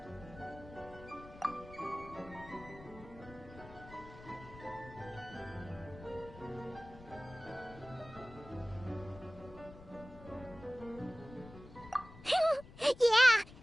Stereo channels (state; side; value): noise; left; rumble, 17 dB below the sound